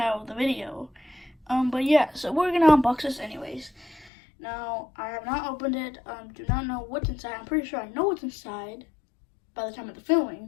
of the video. But yeah, so we're gonna unbox this anyways. Now I have not opened it. Do not know what's inside. I'm pretty sure I know what's inside by the time of the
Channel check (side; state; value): right; drops out; at 4.1 s